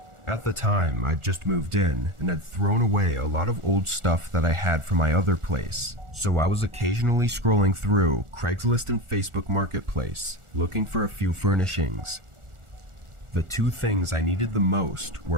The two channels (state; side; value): late; left; 1.4 ms